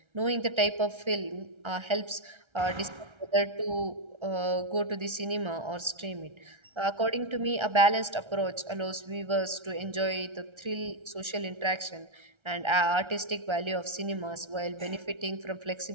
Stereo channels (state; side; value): late; left; 1.3 ms